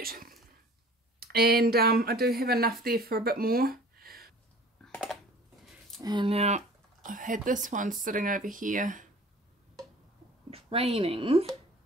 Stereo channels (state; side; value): normal; both; correlation 0.46